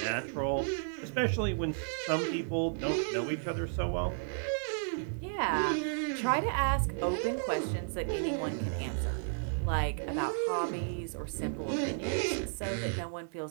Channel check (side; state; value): left; silent; 56 dB below the other